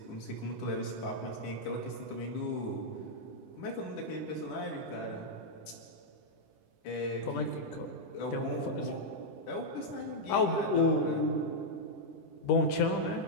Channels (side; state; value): right; late; 10 ms